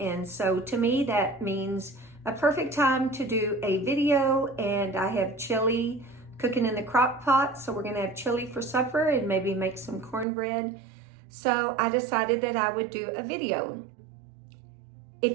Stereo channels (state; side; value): drops out; left; at 10.2 s